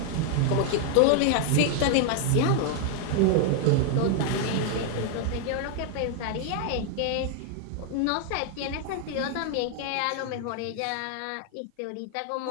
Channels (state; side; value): different; both; correlation 0.00